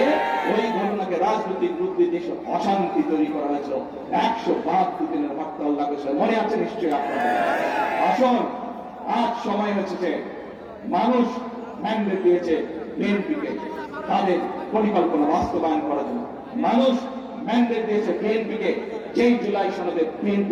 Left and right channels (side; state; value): both; identical; correlation 1.00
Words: ওই ঘটনাকে রাজনৈতিক রূপ দিয়ে দেশে অশান্তি তৈরি করা হয়েছিল, 172 দিনের হরতাল লাগেছিল, মনে আছে নিশ্চয়ই আপনাদের। আসুন, আজ সময় হচ্ছে যে মানুষ ম্যান্ডেট দিয়েছে বিএনপিকে তাদের পরিকল্পনা বাস্তবায়ন করার জন্য। মানুষ ম্যান্ডেট দিয়েছে বিএনপিকে যেই জুলাই সনদে